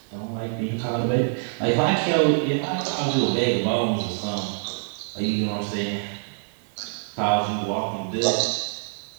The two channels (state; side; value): silent; left; 59 dB below the other